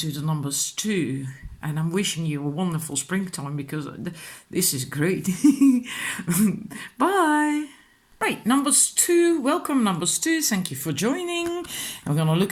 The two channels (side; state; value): both; identical; correlation 1.00